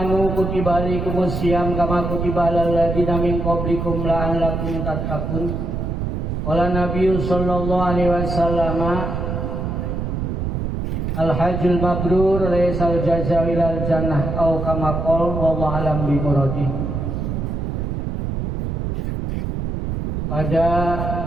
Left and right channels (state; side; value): noise; right; rumble, 2 dB below the sound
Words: kutiba alaikumus syiyam kama kutiba alal ladzina min qablikum la'allakum tattaqun. Qala Nabiyyu sallallahu alaihi wasallam al-hajjul mabrur laysal jazaa'u ilal jannah au kama qala wallahu alam bi muradi. Pada